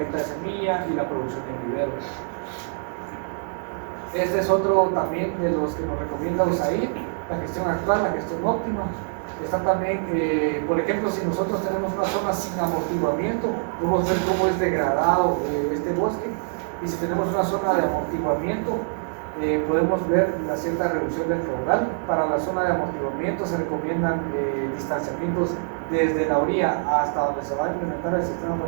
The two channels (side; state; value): left; silent; digital silence